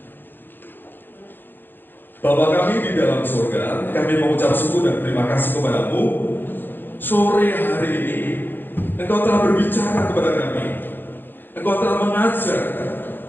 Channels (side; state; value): right; late; 0.096 ms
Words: Bapa kami di dalam surga, kami mengucap syukur dan terima kasih kepadamu. Sore hari ini Engkau telah berbicara kepada kami, Engkau telah mengajar.